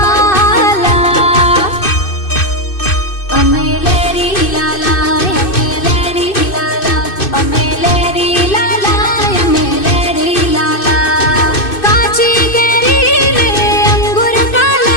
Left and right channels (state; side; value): late; right; 2.6 ms